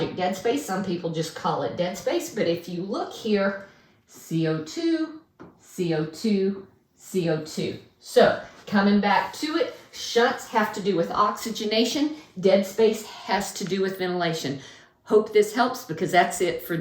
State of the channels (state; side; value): identical; both; correlation 1.00